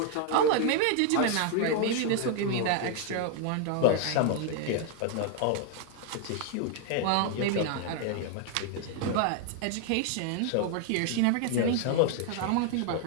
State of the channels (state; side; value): different; both; correlation 0.00